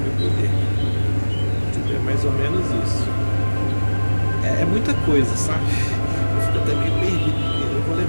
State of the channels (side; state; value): both; inverted; correlation -1.00